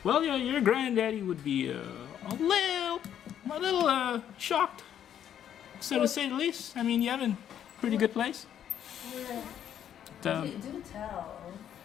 well, your granddaddy would be a little shocked, so to say the least. I mean, Yevon, pretty good place. Do tell.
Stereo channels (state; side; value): quieter; right; 9.9 dB